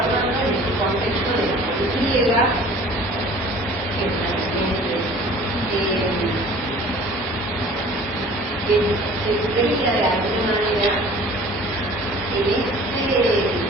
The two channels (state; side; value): normal; both; correlation 0.47